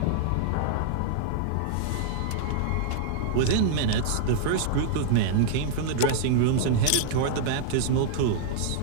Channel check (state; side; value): different; both; correlation -0.01